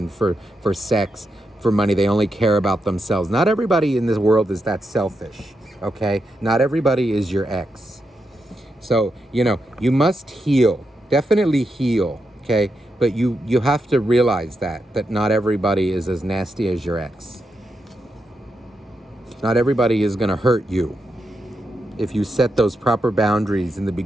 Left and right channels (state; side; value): normal; both; correlation 0.85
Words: for sex, for money. They only care about themselves. Not everybody in this world is that selfish, okay? Not everybody is your ex. So, you know, you must heal, definitely heal, okay? But you have to realize that not everybody is as nasty as your ex. Not everybody is going to hurt you. If you set those proper boundaries in the